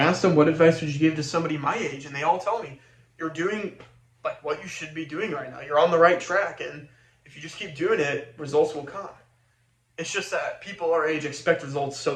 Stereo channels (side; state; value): both; identical; correlation 1.00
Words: them, what advice would you give to somebody my age? And they all tell me, you're doing like what you should be doing right now. You're on the right track, and if you just keep doing it, results will come. It's just that people our age expect results so